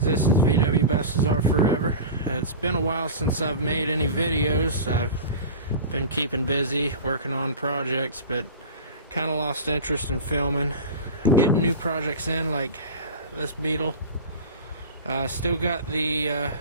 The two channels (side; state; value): both; inverted; correlation -0.31